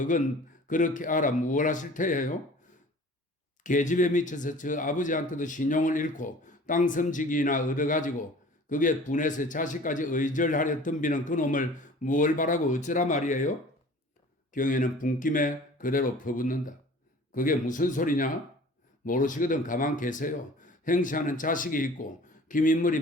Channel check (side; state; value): both; normal; correlation 0.46